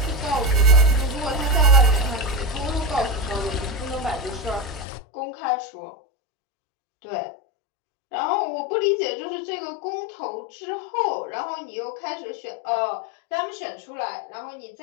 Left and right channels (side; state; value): right; drops out; at 4.9 s